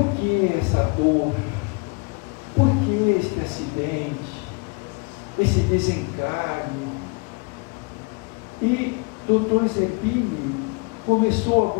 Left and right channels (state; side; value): quieter; right; 31.9 dB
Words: que essa dor? Por que este acidente? Esse desencarne? E Dr. Zerbini começou a